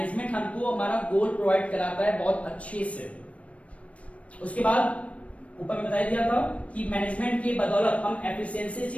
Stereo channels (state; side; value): late; right; 0.064 ms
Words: हमको हमारा गोल प्रोवाइड कराता है बहुत अच्छे से। उसके बाद ऊपर में बता दिया था कि मैनेजमेंट की बदौलत हम एफिशिएंसी